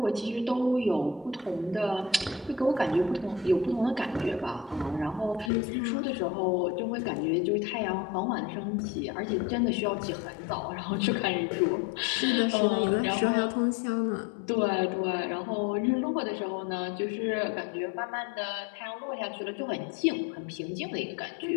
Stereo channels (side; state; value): right; drops out; at 5.5 s